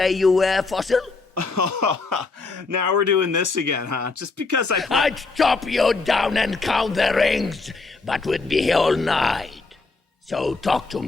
you were, Fossil? Now we're doing this again, huh? Just because I'd chop you down and count the rings, but we'd be here all night. So talk to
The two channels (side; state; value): right; quieter; 3.9 dB